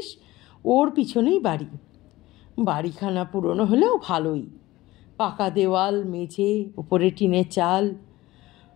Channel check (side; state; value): right; quieter; 18.0 dB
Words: ওর পিছনেই বাড়ি। বাড়িখানা পুরনো হলেও ভালোই, পাকা দেওয়াল, মেঝে, উপরে টিনের চাল,